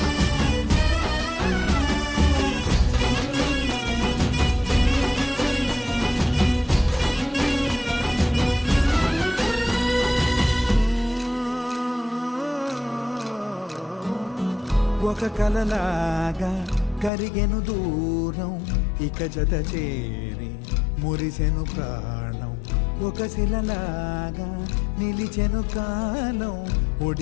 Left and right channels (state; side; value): drops out; right; at 17.1 s